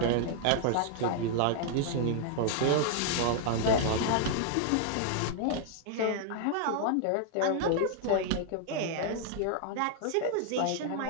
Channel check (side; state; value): both; different; correlation -0.01